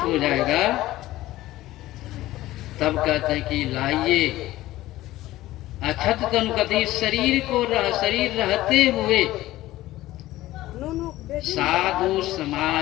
जाएगा, तब कहते हैं कि लाइए अछत तन, कहते शरीर को शरीर रहते हुए साधु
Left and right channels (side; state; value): right; quieter; 16.1 dB